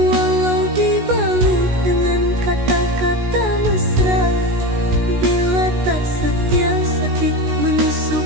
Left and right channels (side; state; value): left; late; 16 ms